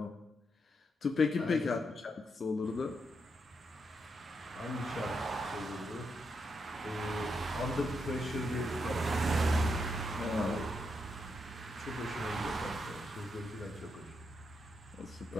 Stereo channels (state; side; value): normal; both; correlation 0.81